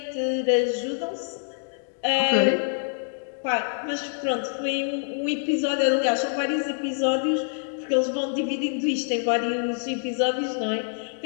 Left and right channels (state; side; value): silent; right; 61 dB below the other